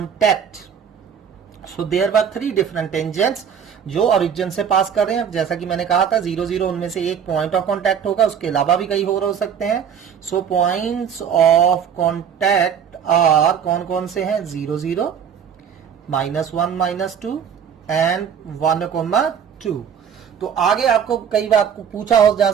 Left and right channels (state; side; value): quieter; left; 7.9 dB